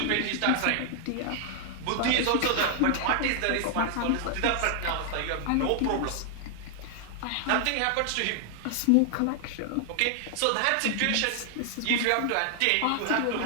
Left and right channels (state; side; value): different; both; correlation 0.00